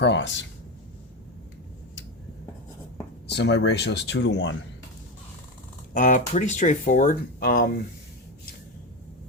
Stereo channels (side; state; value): both; normal; correlation 0.15